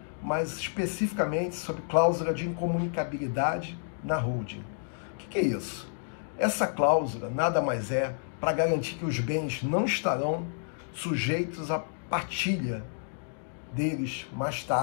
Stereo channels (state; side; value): silent; right; digital silence